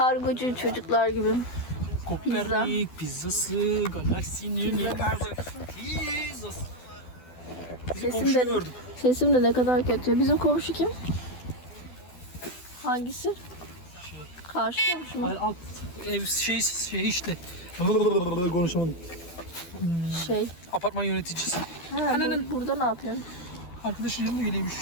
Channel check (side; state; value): right; late; 12 ms